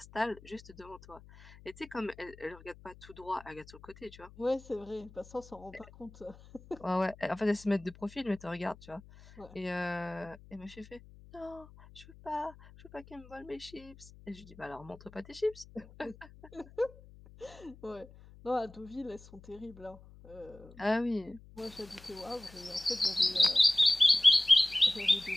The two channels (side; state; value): left; noise; hum, 21 dB below the sound